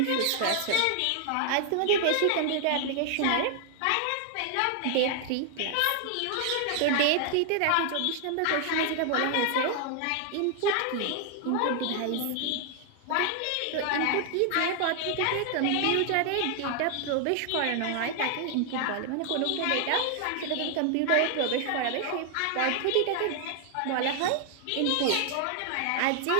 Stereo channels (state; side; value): different; both; correlation 0.00